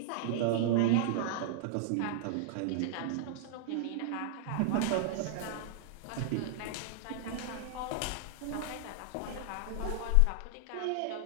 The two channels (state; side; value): different; both; correlation -0.01